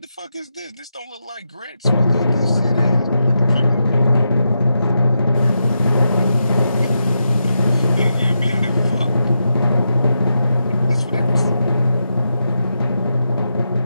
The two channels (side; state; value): both; inverted; correlation -0.86